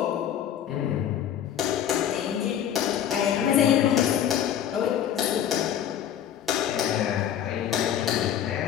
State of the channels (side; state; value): right; quieter; 9.9 dB